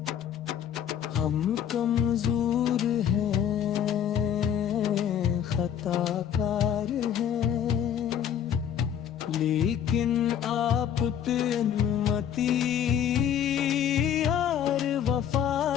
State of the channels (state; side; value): quieter; right; 9.2 dB